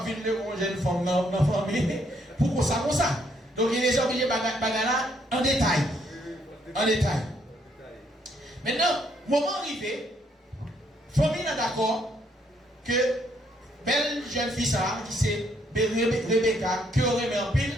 de vivre une jeune femme dans la famille pour ça comme ça. Donc Eliezer a obligé bagala en détail. En détail. Maintenant, moment arrivé, famille est d'accord que belle jeune fille ça, qui c'est Rebecca, qui aurait mis en pile,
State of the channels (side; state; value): both; normal; correlation 0.71